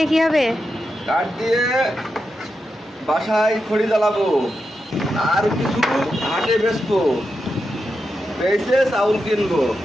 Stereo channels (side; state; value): both; normal; correlation 0.88